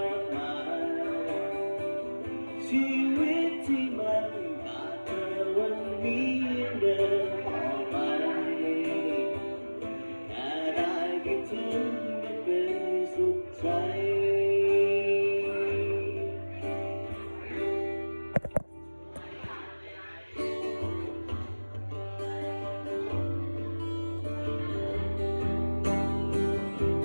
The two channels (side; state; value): both; inverted; correlation -1.00